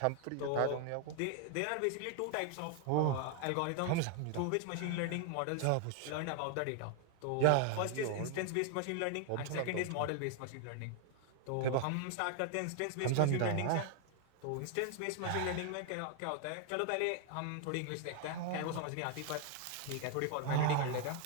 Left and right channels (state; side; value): different; both; correlation 0.00